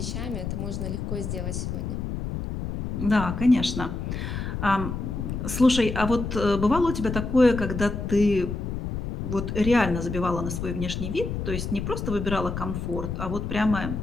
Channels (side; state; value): left; noise; rumble, 4 dB below the sound